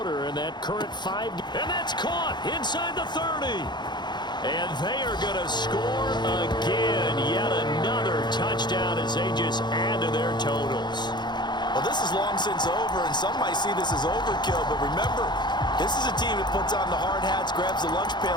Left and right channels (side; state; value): right; late; 0.21 ms